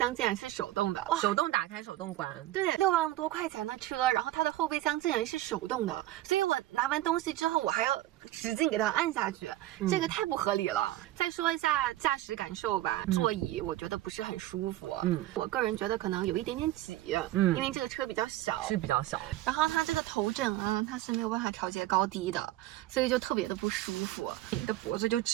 竟然是手动的，手动打开手动关。对，6万多块钱的车，然后它的后备箱竟然是手动的，所以我拿完东西之后我还要使劲给它按下去，这个太不合理了。再说一下驾驶感受吧，座椅我觉得不是很舒服，我个人觉得可能有一点点挤，因为这个车比较小，是比较小，然后它这个头枕啊，它是没有办法调节高低的，所以就特别的不舒服，你的脖子就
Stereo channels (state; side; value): quieter; left; 15.4 dB